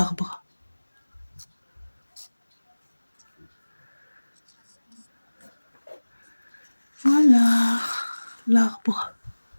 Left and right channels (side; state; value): both; inverted; correlation -1.00